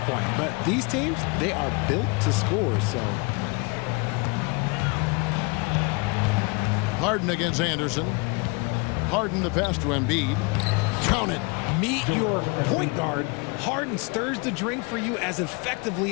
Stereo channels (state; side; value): quieter; right; 30.1 dB